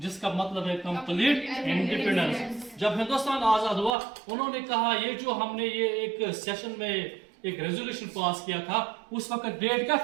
मतलब है कंप्लीट इंडिपेंडेंस। जब हिंदुस्तान आजाद हुआ उन्होंने कहा ये जो हमने ये एक सेशन में एक रेजोल्यूशन पास किया था, उस वक्त डेट क्या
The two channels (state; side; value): drops out; left; at 3.9 s